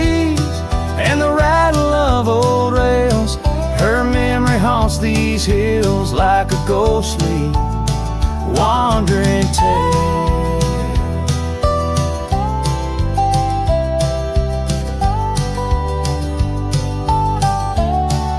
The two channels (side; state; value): both; identical; correlation 1.00